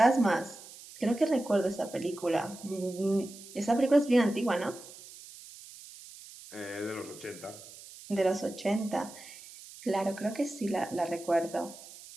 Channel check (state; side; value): noise; right; hiss, 17 dB below the sound